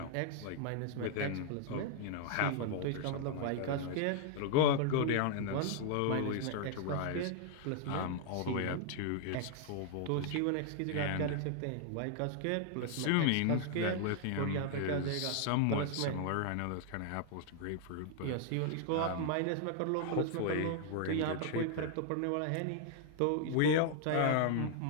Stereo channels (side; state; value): both; different; correlation 0.00